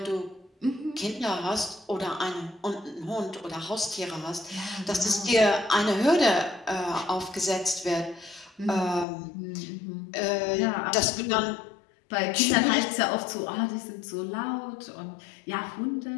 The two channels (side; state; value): right; drops out; at 9.1 s